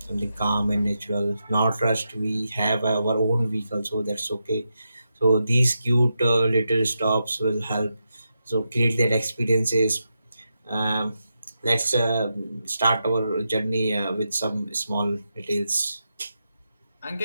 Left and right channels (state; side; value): inverted; both; correlation -0.87